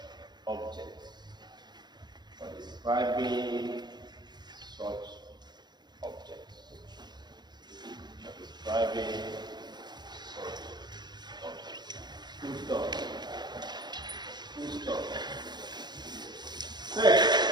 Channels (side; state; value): left; late; 0.21 ms